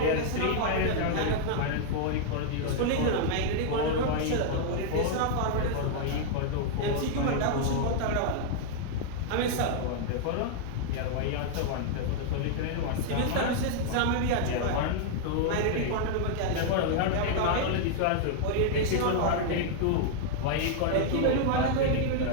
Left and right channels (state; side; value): different; both; correlation -0.01